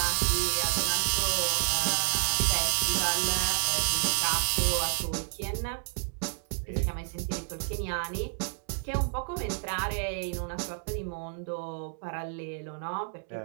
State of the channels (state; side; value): silent; left; 56 dB below the other